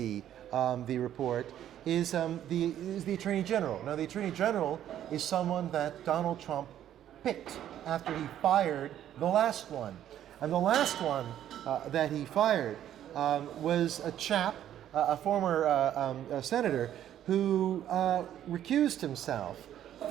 the report, is the Attorney General. Now, the Attorney General is someone that Donald Trump picked after he fired the last one. And the last one that he fired was a chap, a former senator, who recused himself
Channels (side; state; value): left; quieter; 11.2 dB